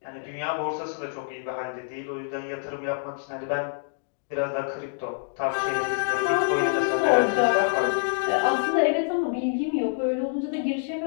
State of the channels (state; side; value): silent; right; digital silence